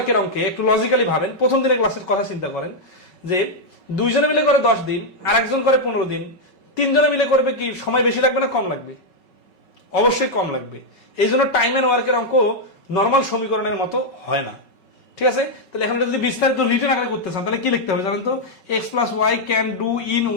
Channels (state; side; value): late; right; 5.3 ms